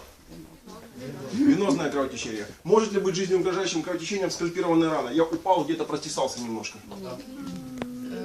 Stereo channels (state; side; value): identical; both; correlation 1.00